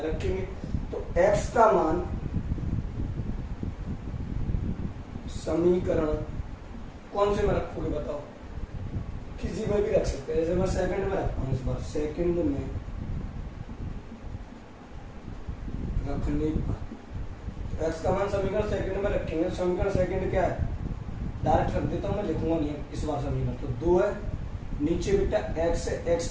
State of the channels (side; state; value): both; identical; correlation 1.00